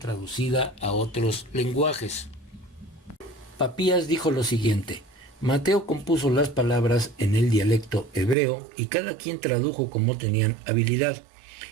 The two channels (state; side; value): drops out; left; at 8.3 s